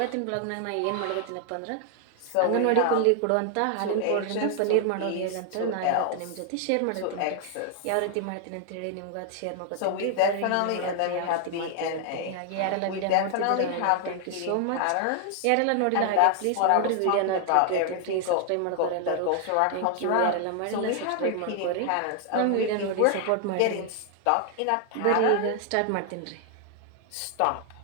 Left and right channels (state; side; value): different; both; correlation 0.00